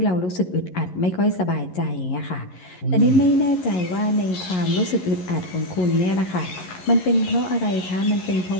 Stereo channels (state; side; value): late; right; 11 ms